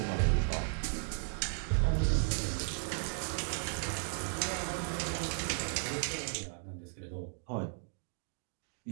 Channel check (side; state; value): left; silent; 54 dB below the other